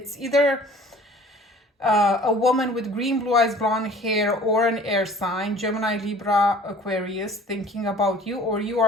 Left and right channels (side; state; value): both; normal; correlation 0.49